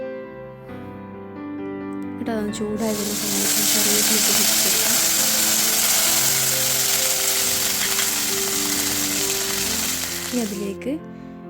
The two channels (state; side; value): identical; both; correlation 1.00